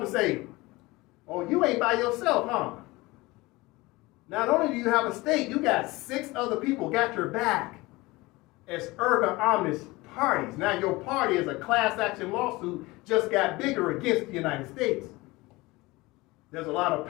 and say, oh, you ain't by yourself, huh? Not only do you have a state, you got 6 other people got your back as erga omnes parties. Now your party is a class action lawsuit just got bigger against the United States. There's a lot of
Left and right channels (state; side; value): quieter; right; 21.7 dB